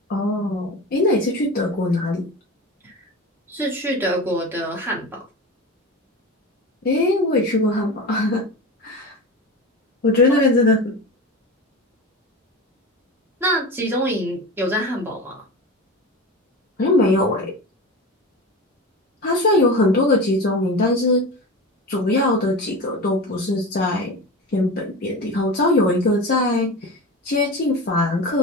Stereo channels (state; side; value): normal; both; correlation 0.28